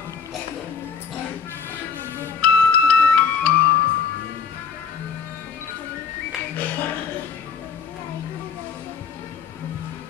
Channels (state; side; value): quieter; right; 6.3 dB